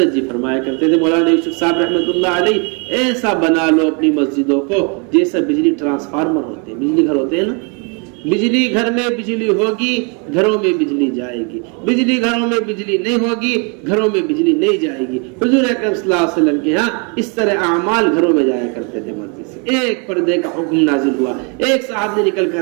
جی فرمایا کرتے تھے مولانا یوسف صاحب رحمۃ اللہ علیہ، ایسا بنا لو اپنی مسجدوں کو جیسا بجلی ٹرانسفارمر ہوتے ہیں، بجلی گھر ہوتے ہیں نا، بجلی گھر میں بجلی ہوگی گھروں میں بجلی جائے گی، بجلی گھروں میں بجلی نہیں ہوگی گھروں میں بجلی نہیں جائے گی۔ حضور اکرم صلی اللہ علیہ وسلم کے ہاں اس طرح اعمال گھروں میں جایا کرتے تھے مسجد سے۔ ایک پردے کا حکم نازل ہوا، ایک صاحب نے نکل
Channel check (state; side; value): quieter; left; 34.9 dB